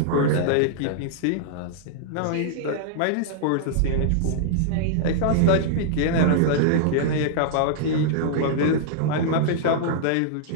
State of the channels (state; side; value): different; both; correlation -0.01